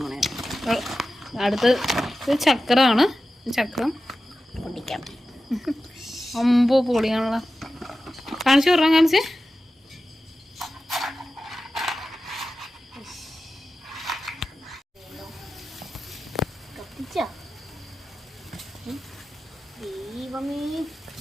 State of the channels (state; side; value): normal; both; correlation 0.93